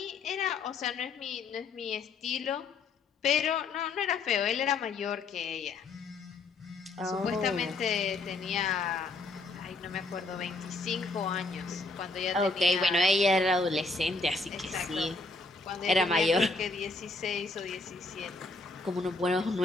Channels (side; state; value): right; quieter; 3.4 dB